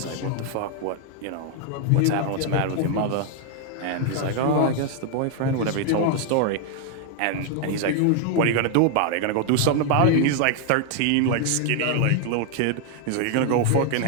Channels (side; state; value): both; different; correlation 0.00